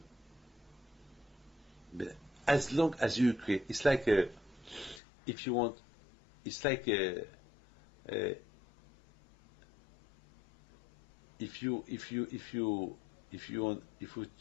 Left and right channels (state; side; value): drops out; right; at 5.0 s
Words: but as long as you create, it's like if you want, it's like if you